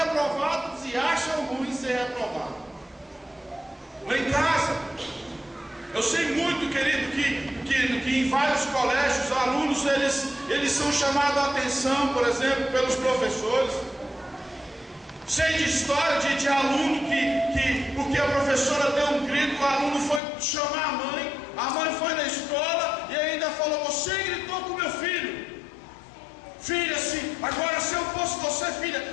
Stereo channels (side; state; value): right; drops out; at 20.2 s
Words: e acham ruim ser reprovado. Lá em casa, eu sei muito, querido, que em vários colégios, alunos, eles são chamados a atenção, por exemplo, pelos professores. Sei de história de aluno que porque a professora deu um grito, o aluno foi chamar a mãe foi na escola e ainda falou: você gritou com meu filho. Filha, agora se eu fosse você,